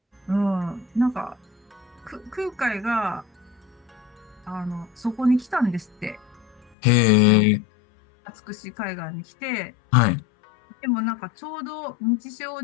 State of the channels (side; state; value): right; drops out; at 6.7 s